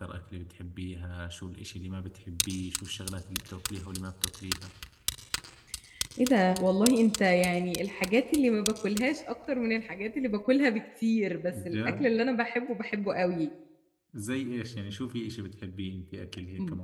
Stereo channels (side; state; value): both; identical; correlation 1.00